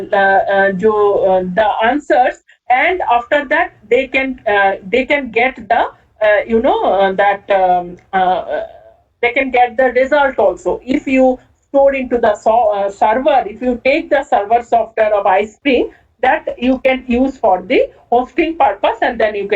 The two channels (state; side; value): identical; both; correlation 1.00